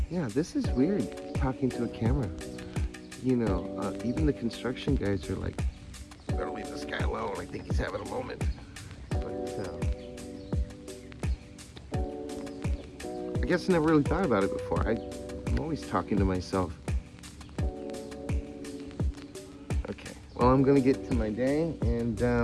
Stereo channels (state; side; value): identical; both; correlation 1.00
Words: yeah, this is weird, talking to a camera. You know, even the construction guys are like, better leave this guy alone, I think he's having a moment. But I guess I never really thought about it before. I'm always talking to myself. Okay, well, I'm gonna get to my day, and